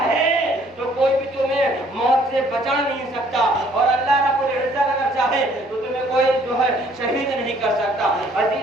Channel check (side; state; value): both; normal; correlation 0.60